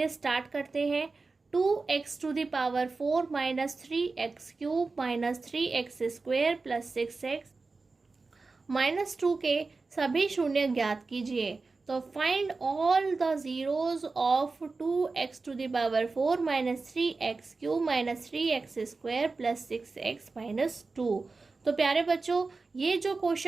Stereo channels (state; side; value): quieter; left; 4.0 dB